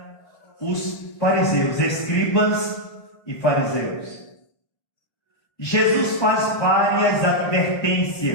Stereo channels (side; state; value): right; late; 1.3 ms